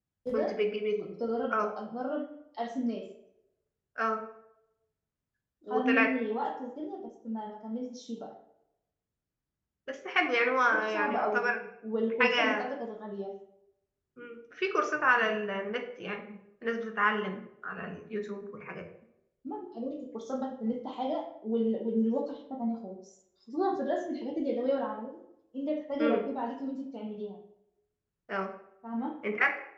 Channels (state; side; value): identical; both; correlation 1.00